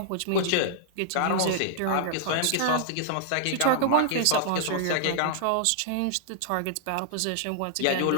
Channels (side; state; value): both; different; correlation -0.01